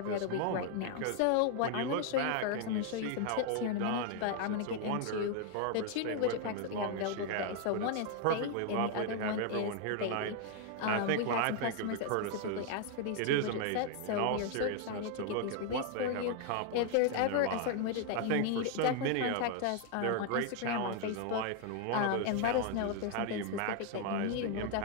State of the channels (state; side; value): different; both; correlation 0.00